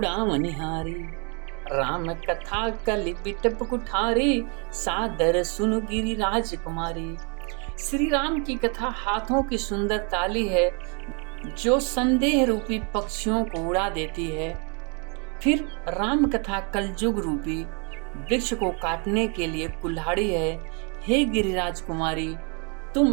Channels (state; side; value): quieter; left; 35.4 dB